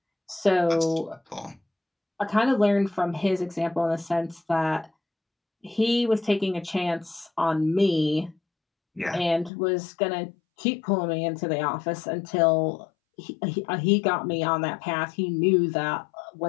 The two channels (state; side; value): drops out; right; at 9.5 s